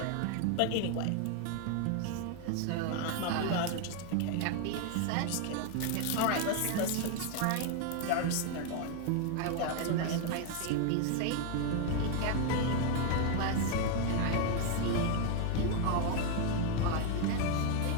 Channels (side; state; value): both; different; correlation 0.01